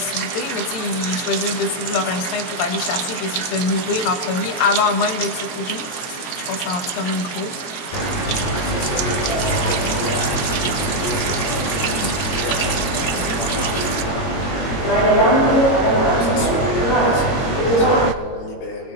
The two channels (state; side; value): late; right; 22 ms